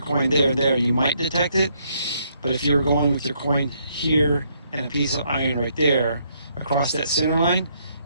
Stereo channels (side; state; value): both; inverted; correlation -0.72